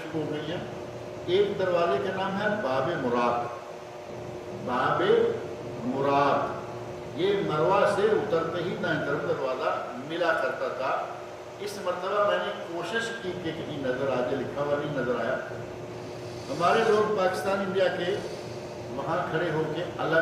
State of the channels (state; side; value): identical; both; correlation 1.00